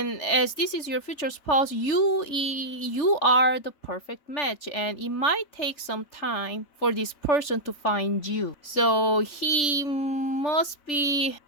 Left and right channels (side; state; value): right; late; 3.4 ms